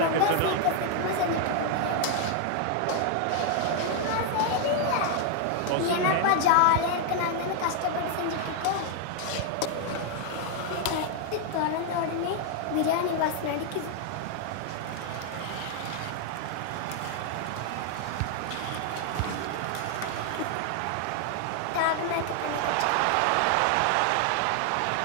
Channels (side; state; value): both; different; correlation 0.00